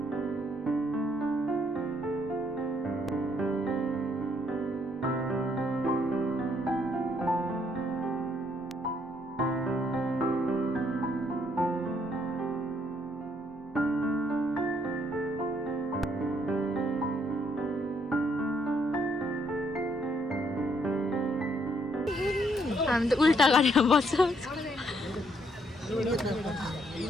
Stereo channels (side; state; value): both; normal; correlation 0.70